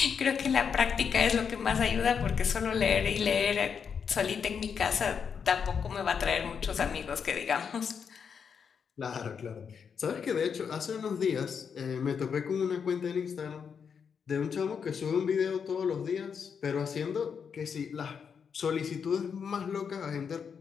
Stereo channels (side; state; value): right; quieter; 6.7 dB